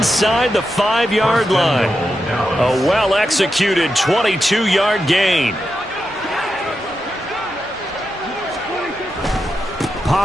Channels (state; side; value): normal; both; correlation 0.87